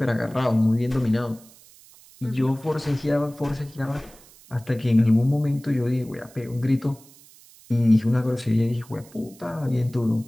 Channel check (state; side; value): noise; right; hiss, 24 dB below the sound